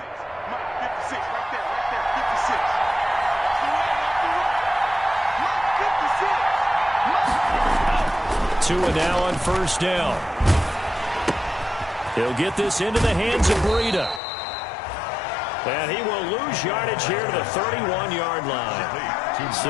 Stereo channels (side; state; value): right; drops out; at 14.2 s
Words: Tua now on first down. He'll get this into the hands of Breida. And he will lose yardage here to the 31-yard line.